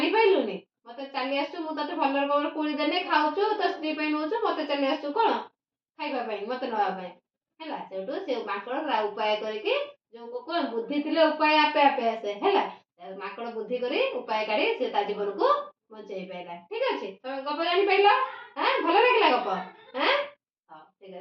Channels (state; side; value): identical; both; correlation 1.00